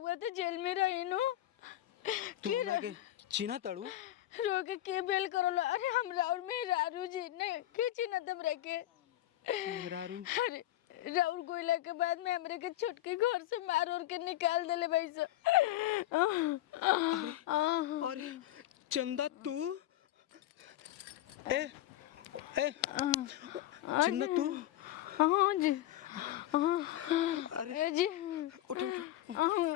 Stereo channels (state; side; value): quieter; right; 14.1 dB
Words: तो जेल में रही नु तू हमरा के चिन्हा तड़ू रोके के बेल करलो अरे हमरा और मेहरारू जी ने के चिन्हा हमरा के मेहरारू अरे राउर गोइला के बाद में हमरे के छुटकी घर से मार और के निकाल देले भाई सो अरे अरे चंदा तू ए ए चंदा तू हां जी अरे जी उठ उठ